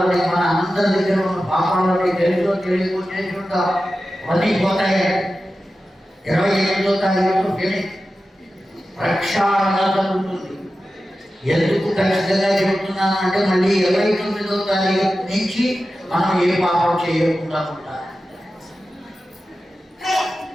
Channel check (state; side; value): normal; both; correlation 0.93